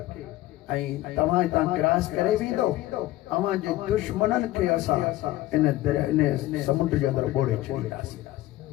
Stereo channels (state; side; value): quieter; right; 16.2 dB